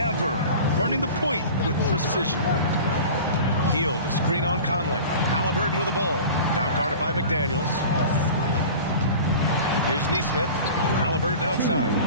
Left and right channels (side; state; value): both; inverted; correlation -0.38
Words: running the point with precision. Hield, a screen on Conley. Halliburton with the ball. Now guarded by McDaniels. Here's Nesmith. Halliburton outside.